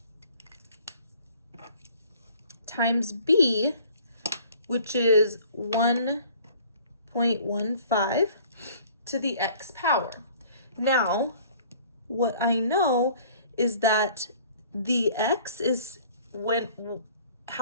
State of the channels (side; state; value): both; inverted; correlation -0.52